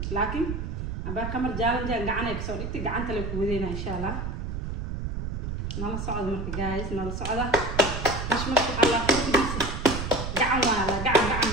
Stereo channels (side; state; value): right; noise; rumble, 4 dB below the sound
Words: لكن أبى كمر جالن جان قعنك صار إنت قعنت لك ودينا إن شاء الله نلا صعد مركي جايز نلا صعدة مش مركي على كل بيس قعن ولا قعن